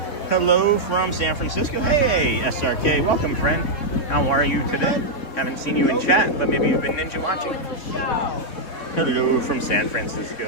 Hello from San Francisco. Hey, SRK. Welcome, friend. How are you today? Haven't seen you in chat, but maybe you've been ninja watching. Hello from San Francisco.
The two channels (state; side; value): late; right; 3.7 ms